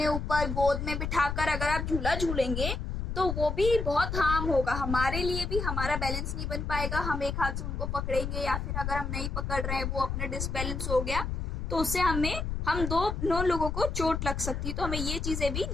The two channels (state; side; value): noise; left; rumble, 3 dB below the sound